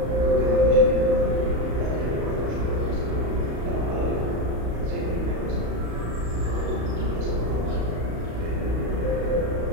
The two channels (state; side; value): late; left; 35 ms